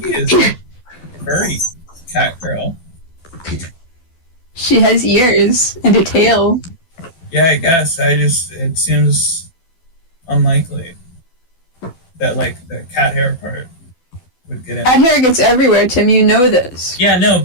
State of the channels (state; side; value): late; right; 12 ms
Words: is a furry cat girl. She has ears and a tail. Yeah, I guess. It seems unlikely that, like, the cat hair part would get in. Cat hair gets everywhere, Tim. You know this. Yeah, no,